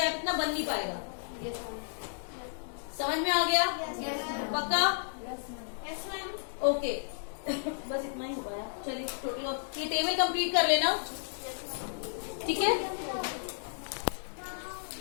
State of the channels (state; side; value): silent; right; 56 dB below the other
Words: इतना बन नहीं पाएगा। समझ में आ गया? पक्का? Yes ma'am. ओके बस इतना ही हो पाया। चलिए टोटल ये टेबल कंप्लीट कर लेना, ठीक है?